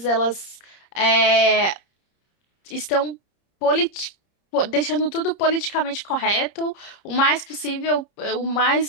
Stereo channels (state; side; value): late; right; 30 ms